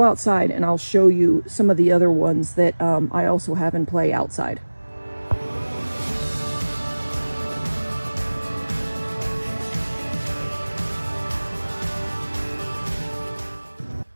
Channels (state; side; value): inverted; both; correlation -1.00